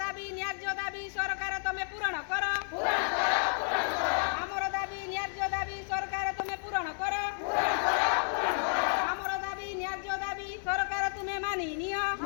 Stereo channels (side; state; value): right; silent; digital silence